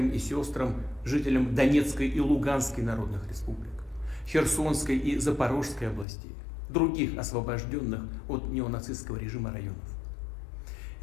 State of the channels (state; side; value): drops out; right; at 6.1 s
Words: и сестрам, жителям Донецкой и Луганской народных республик, Херсонской и Запорожской областей, других освобожденных от неонацистского режима районов.